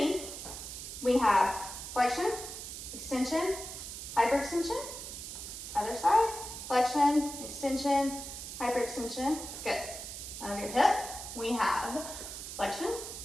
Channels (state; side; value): noise; right; hiss, 9 dB below the sound